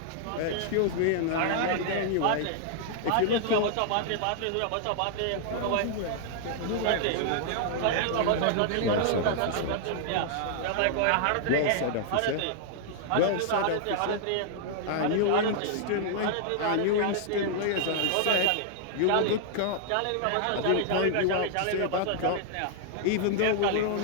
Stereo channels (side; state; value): both; different; correlation -0.01